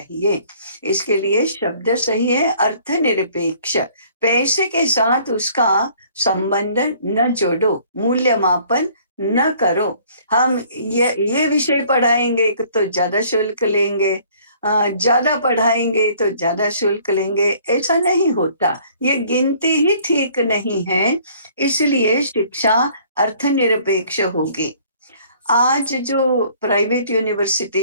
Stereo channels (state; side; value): inverted; both; correlation -0.57